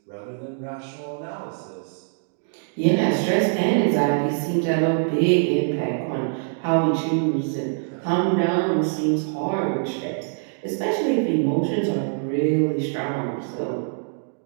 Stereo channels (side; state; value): left; silent; digital silence